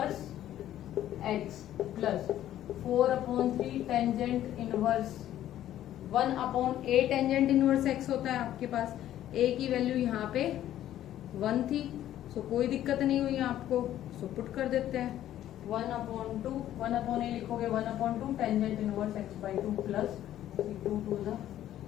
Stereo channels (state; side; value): quieter; right; 12.4 dB